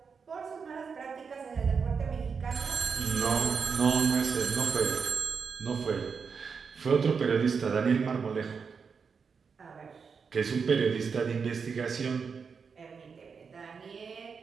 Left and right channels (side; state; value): left; quieter; 5.7 dB